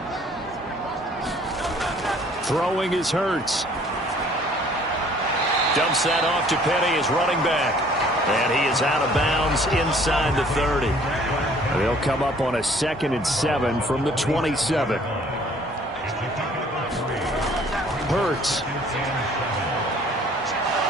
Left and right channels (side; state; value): both; normal; correlation 0.56